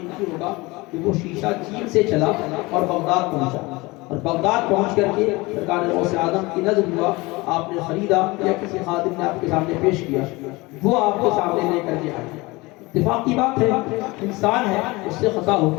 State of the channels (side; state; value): right; quieter; 23.1 dB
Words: ہوگا کہ وہ شیشہ چین سے چلا اور بغداد پہنچا، اور بغداد پہنچ کر کے سرکار غوث اعظم کی نظر ہوا، آپ نے خریدا یا کسی خادم نے آپ کے سامنے پیش کیا، وہ آپ کے سامنے لے کر کے آئے۔ اتفاق کی بات ہے، انسان ہے، اس سے خطا